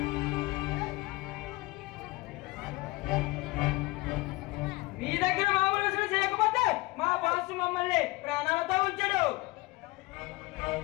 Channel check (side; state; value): right; quieter; 22.0 dB